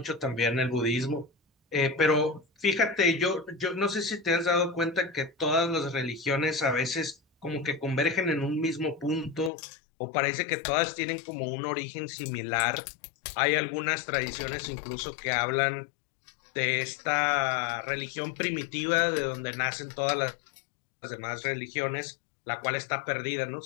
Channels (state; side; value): drops out; right; at 9.5 s